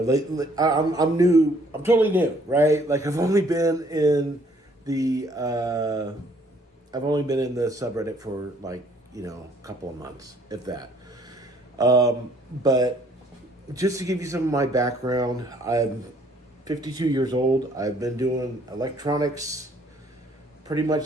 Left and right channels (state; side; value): normal; both; correlation 0.62